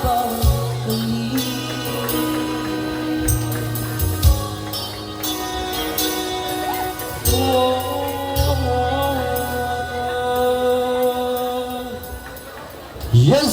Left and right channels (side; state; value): both; identical; correlation 1.00